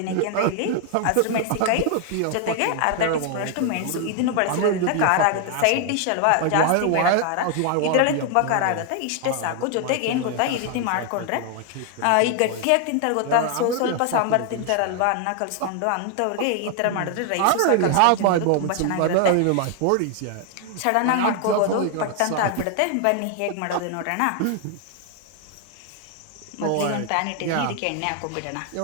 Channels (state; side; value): different; both; correlation 0.00